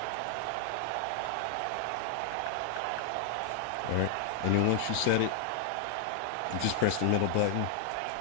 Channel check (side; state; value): both; different; correlation 0.00